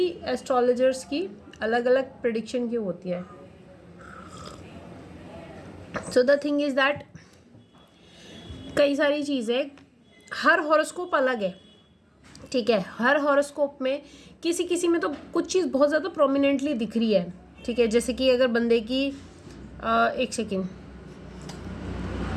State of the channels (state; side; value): identical; both; correlation 1.00